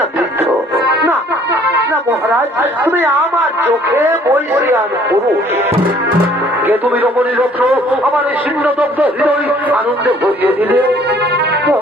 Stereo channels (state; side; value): normal; both; correlation 0.58